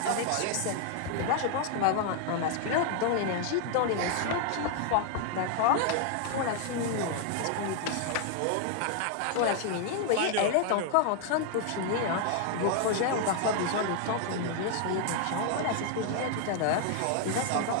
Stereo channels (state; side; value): different; both; correlation 0.00